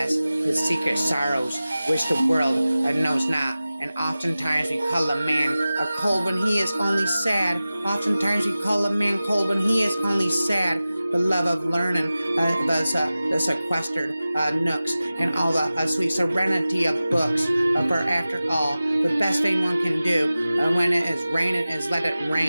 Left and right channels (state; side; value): inverted; both; correlation -0.96